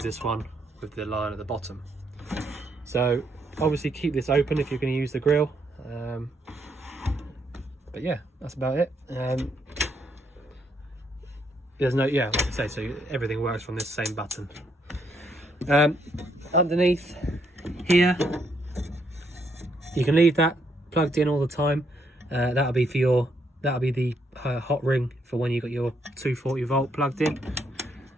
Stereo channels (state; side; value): normal; both; correlation 0.74